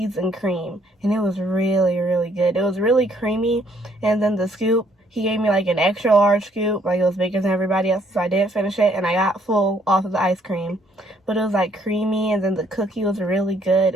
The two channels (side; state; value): both; normal; correlation 0.66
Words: and cream, and it was really, really good. It was really creamy. And then the scoop, he gave me like an extra large scoop, like it was bigger than everybody else, so I didn't finish it, and I got full off of the ice cream. But it was like creamy, and then the cookie was really good.